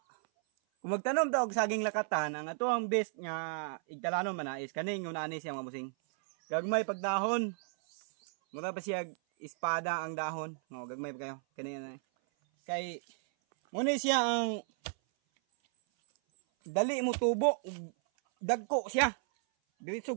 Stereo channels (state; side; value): silent; left; 55 dB below the other